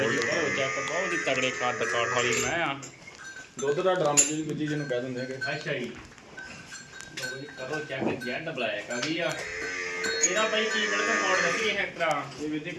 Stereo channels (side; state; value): both; identical; correlation 1.00